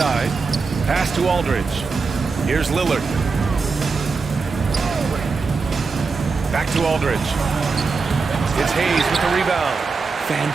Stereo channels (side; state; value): left; quieter; 4.5 dB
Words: Pass to Aldridge. Here's Lillard. Back to Aldridge. It's Hayes with the rebound.